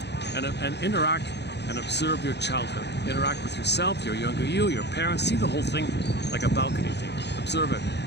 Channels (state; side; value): late; right; 0.50 ms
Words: And interact and observe your childhood. Interact with yourself, your younger you, your parents. See the whole thing like a balcony thing. Observe it.